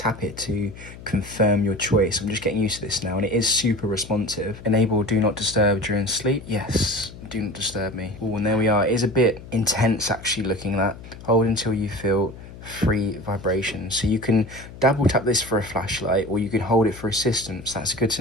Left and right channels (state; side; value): noise; left; hum, 16 dB below the sound